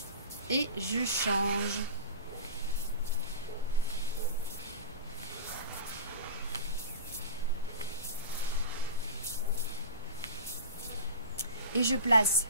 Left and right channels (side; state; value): both; inverted; correlation -0.31